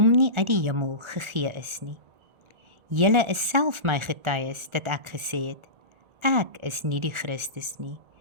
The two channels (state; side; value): late; left; 1.4 ms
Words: nie uit die hemel gegee is nie. Julle is self my getuies dat ek gesê het, ek is nie die Christus nie,